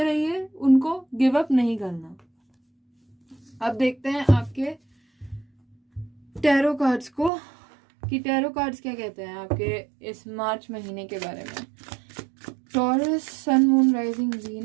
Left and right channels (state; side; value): drops out; left; at 7.3 s